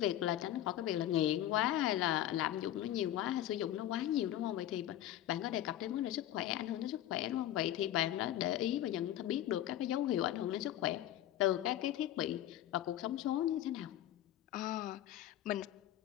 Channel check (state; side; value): quieter; right; 12.6 dB